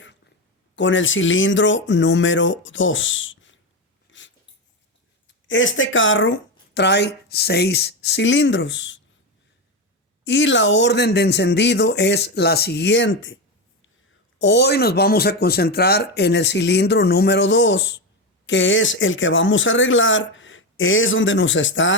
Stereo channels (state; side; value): normal; both; correlation 0.14